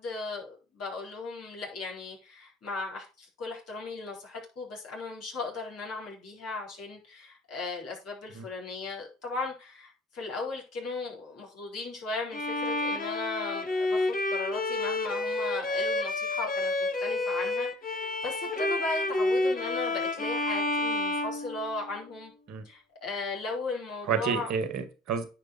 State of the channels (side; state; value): both; normal; correlation 0.48